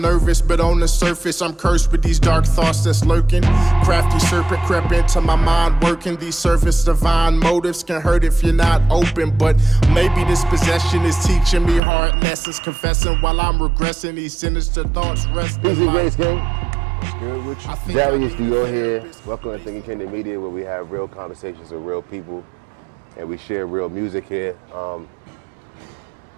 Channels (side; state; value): left; drops out; at 11.8 s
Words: but on the surface I'm cursed with these dark thoughts that's lurking. Crafty serpent crept into my mind working. These surface divine motives can hurt if you're not open. But maybe this possession is teaching me hard lessons. Confessing while I'm regressing, these sinister thoughts rest in Easy my... Grace Gang. Good with you. Darius Dior here. Welcome to Thinking Kingdom Media, where we have real conversations with real people and we share real music here.